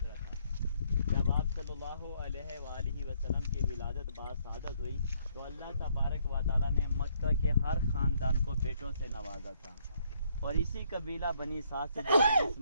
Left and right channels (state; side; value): inverted; both; correlation -0.68